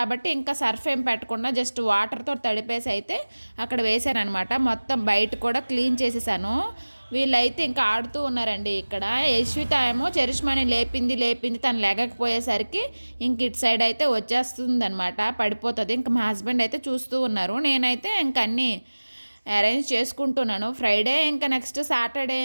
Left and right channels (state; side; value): inverted; both; correlation -1.00